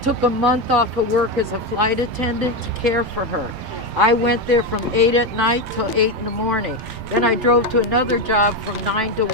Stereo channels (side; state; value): both; normal; correlation 0.11